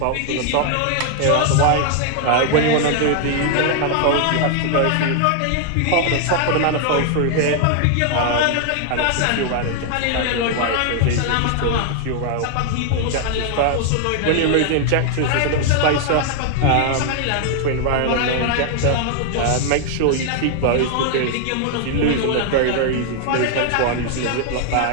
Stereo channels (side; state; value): both; different; correlation 0.00